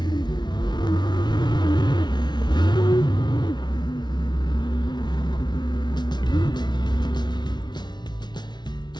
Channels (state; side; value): late; right; 0.20 ms